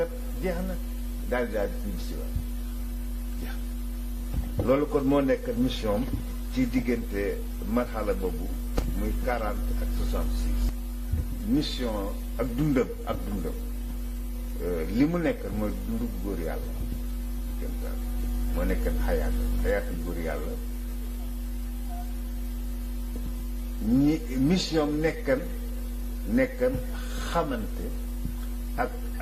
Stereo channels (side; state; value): both; identical; correlation 1.00